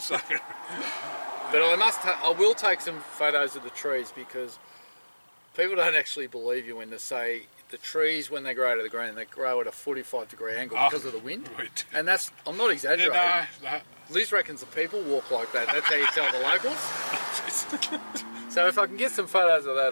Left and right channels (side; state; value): both; inverted; correlation -1.00